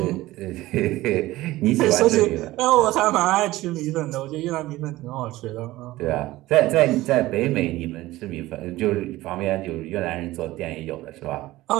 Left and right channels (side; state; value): left; quieter; 17.5 dB